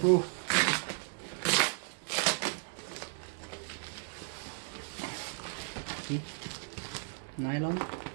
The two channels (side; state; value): left; silent; 55 dB below the other